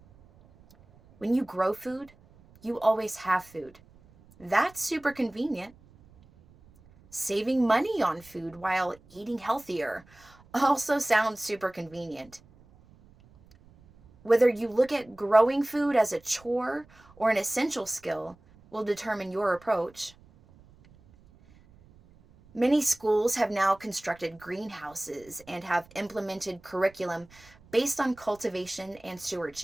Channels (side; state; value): right; noise; rumble, 26 dB below the sound